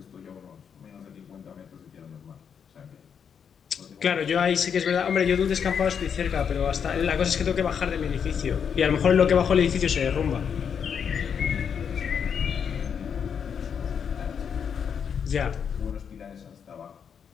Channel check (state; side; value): quieter; right; 7.3 dB